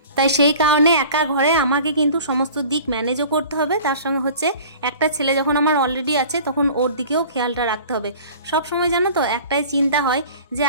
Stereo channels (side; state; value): both; inverted; correlation -0.44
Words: তাই সেই কারণে একা ঘরে আমাকে কিন্তু সমস্ত দিক ম্যানেজও করতে হবে। তার সঙ্গে হচ্ছে একটা ছেলে যখন আমার অলরেডি আছে তখন ওর দিকেও খেয়ালটা রাখতে হবে। সব সময় জানো তো একটাই চিন্তা হয় যে